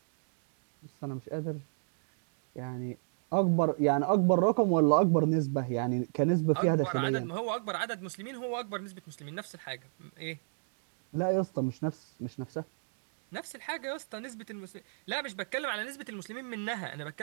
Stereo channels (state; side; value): silent; left; digital silence